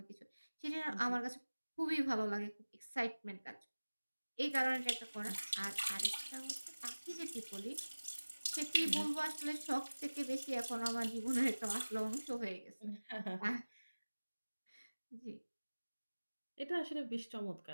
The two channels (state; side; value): inverted; both; correlation -1.00